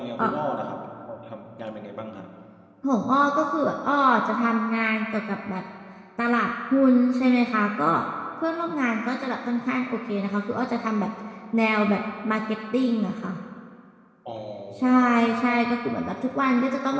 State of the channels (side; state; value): both; identical; correlation 1.00